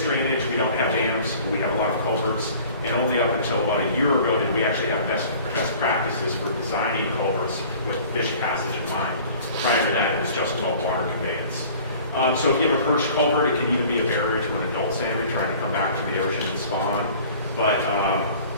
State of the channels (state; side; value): inverted; both; correlation -0.48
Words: drainage, we don't have dams, we have a lot of culverts, and only up until about a year ago did we actually have best practices for designing culverts with fish passage in mind. Prior to that, it was just about water conveyance. So if you have a perched culvert, it can even be a barrier to an adult salmon trying to come back to the ocean and spawn. But